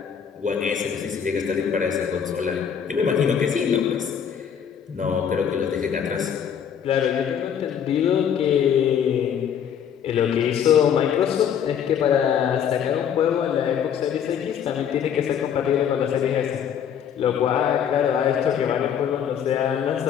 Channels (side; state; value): right; quieter; 8.3 dB